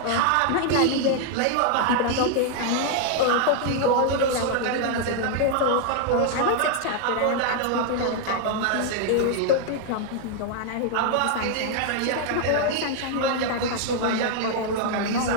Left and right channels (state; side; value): different; both; correlation 0.00